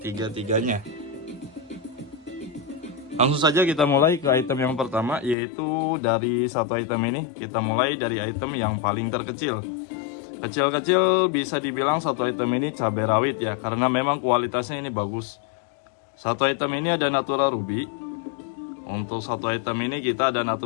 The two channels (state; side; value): drops out; right; at 5.4 s